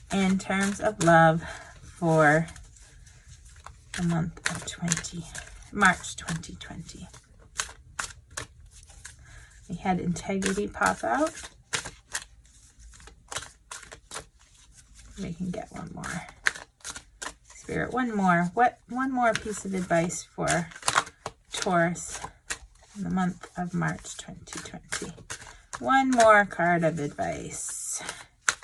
in terms of love for the month of March 2020? We had integrity pop out. We can get one more. Spirit, one more piece of advice for Taurus in the month of March 2020. One more card of advice.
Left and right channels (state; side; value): identical; both; correlation 1.00